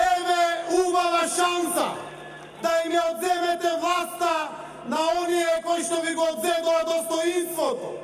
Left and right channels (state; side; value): identical; both; correlation 1.00